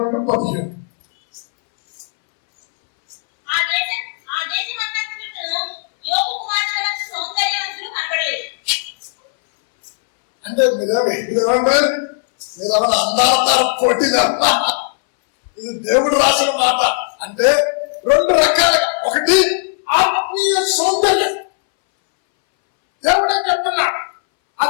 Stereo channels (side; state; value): right; silent; 63 dB below the other